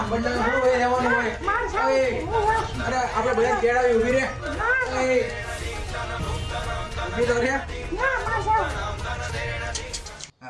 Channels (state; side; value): identical; both; correlation 1.00